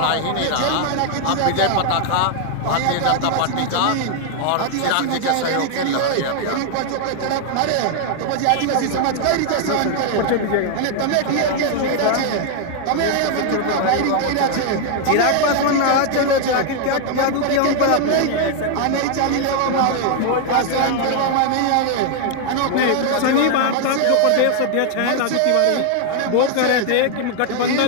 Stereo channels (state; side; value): different; both; correlation 0.00